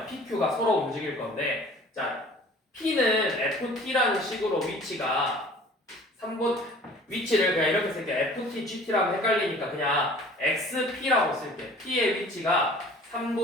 PQ가 서로 움직일 건데, 자, P는 FT라는 식으로 위치가 3분 위치를 그냥 이렇게 쓸게. FT, GT라고 헷갈리니까 그냥 XP라고 쓸게. P의 위치가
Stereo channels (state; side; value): normal; both; correlation 0.48